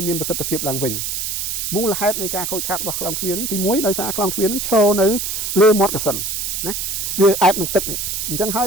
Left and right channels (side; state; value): right; noise; hiss, 2 dB below the sound